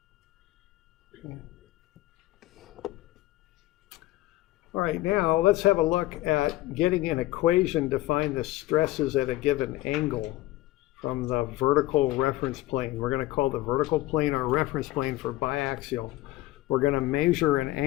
Okay. All right, now let's have a look at getting an equation to find the stresses at a given angle from the vertical reference plane. We're going to call the vertical plane our reference plane for biaxial. We're going to measure an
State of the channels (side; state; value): right; quieter; 16.9 dB